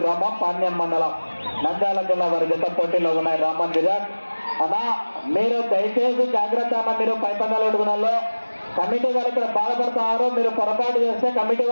గ్రామం పాణ్యం మండలం నంద్యాల జిల్లా వారి జత పోటీలో ఉన్నాయి. రామన్ విరాట్ అన్నా, మీరు దయచేసి జాగ్రత్త అన్న. మీరు పైపందాలు అడుగునాలో కమిటీ వాళ్ళు ఇక్కడ బాధపడుతున్నారు. మీరు పొరపాటు చేస్తే కమిటీ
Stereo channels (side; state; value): both; inverted; correlation -1.00